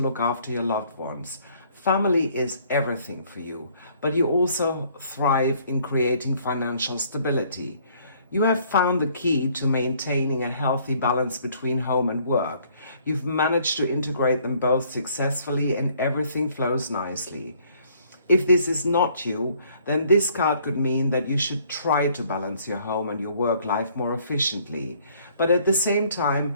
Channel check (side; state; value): both; inverted; correlation -0.61